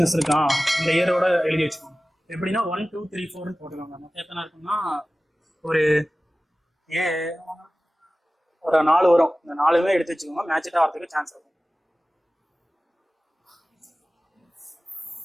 இருக்கான், இந்த இயரோட எழுதி வச்சுக்கோங்க. எப்படின்னா 1 2 3 4 போட்டுக்கோங்க. மொத்தம் எத்தனை இருக்குன்னா ஒரு 4 வரும். இந்த 4மே எடுத்து வச்சுக்கோங்க, மேட்சிட்டா வரதுக்கு சான்ஸ் இருக்கும்.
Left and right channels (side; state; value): both; normal; correlation 0.97